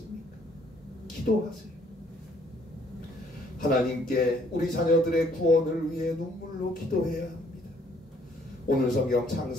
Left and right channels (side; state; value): both; normal; correlation 0.64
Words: 기도하세요. 하나님께 우리 자녀들의 구원을 위해 눈물로 기도해야 합니다. 오늘 성경